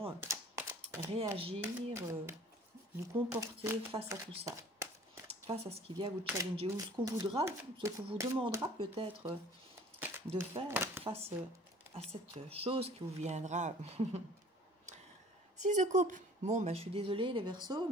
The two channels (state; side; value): normal; both; correlation 0.50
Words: réagir, vous comporter face à tout ça, face à ce qui vient vous challenger, ou ce qu'on voudra, ce qu'on vous demandera peut-être de faire face à cette chose qui vous viendra. 6 de coupe. Bon, je suis désolée les Verseaux,